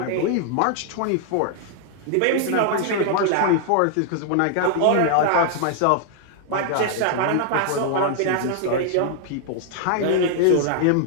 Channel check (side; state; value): both; different; correlation 0.00